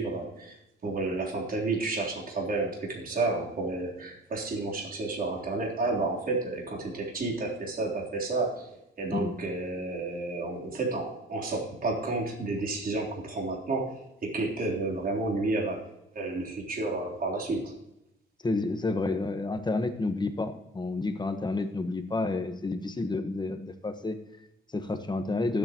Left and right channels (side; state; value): both; normal; correlation 0.45